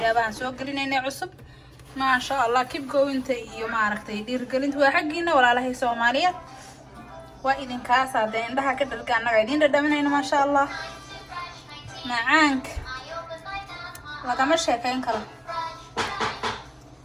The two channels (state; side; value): identical; both; correlation 1.00